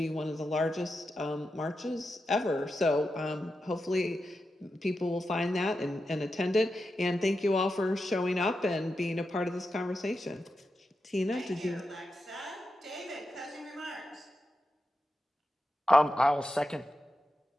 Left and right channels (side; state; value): both; normal; correlation 0.89